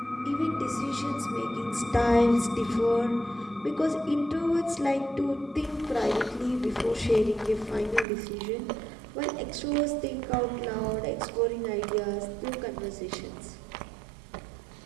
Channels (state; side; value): drops out; left; at 8.1 s